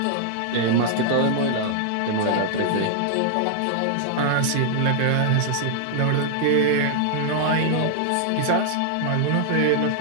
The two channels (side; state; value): both; different; correlation -0.01